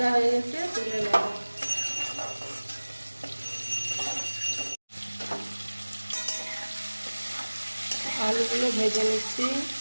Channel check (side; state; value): both; inverted; correlation -1.00